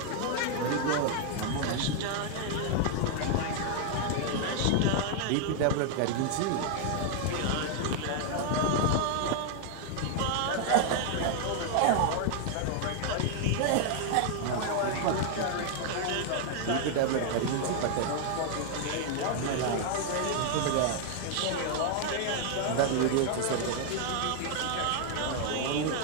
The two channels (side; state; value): both; different; correlation 0.00